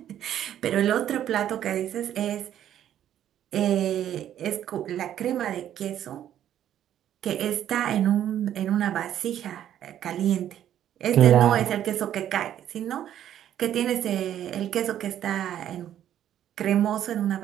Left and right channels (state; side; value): quieter; left; 10.9 dB